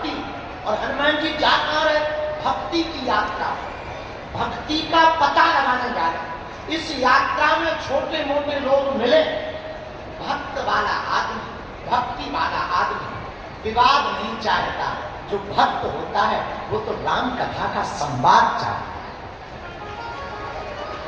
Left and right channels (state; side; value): identical; both; correlation 1.00